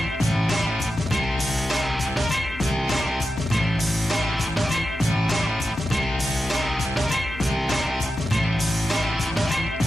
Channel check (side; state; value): both; normal; correlation 0.90